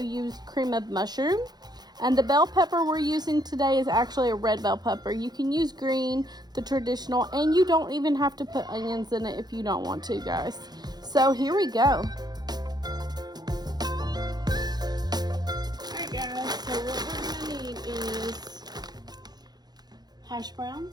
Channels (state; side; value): late; left; 0.20 ms